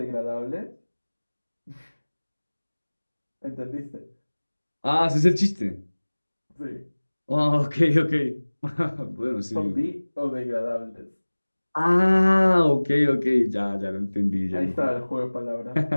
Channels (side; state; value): both; inverted; correlation -1.00